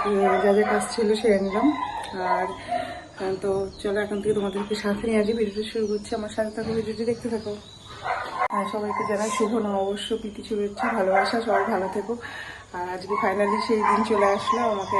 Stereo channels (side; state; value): both; identical; correlation 1.00